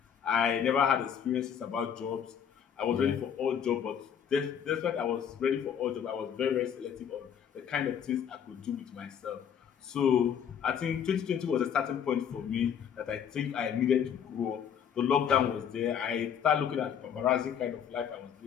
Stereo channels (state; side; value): quieter; right; 8.3 dB